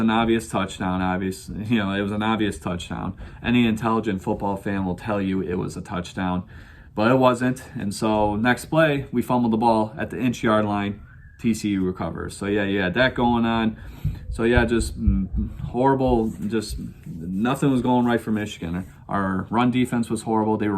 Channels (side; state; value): both; identical; correlation 1.00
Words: obvious touchdown, it was an obvious touchdown. Any intelligent football fan will tell you it was a touchdown, but it wasn't. And so next play, we fumbled the ball at the inch-yard line. TCU recovers. So yeah, you had that going on. So yeah, just horrible. Just nothing was going right for Michigan. Our run defense was horrible. They were